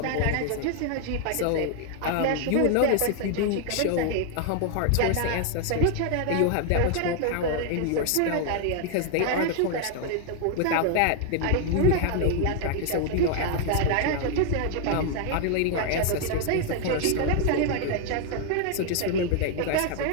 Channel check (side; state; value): both; different; correlation 0.00